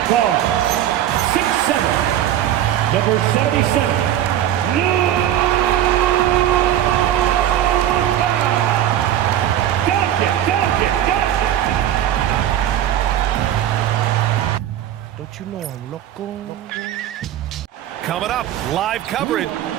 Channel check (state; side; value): quieter; left; 11.6 dB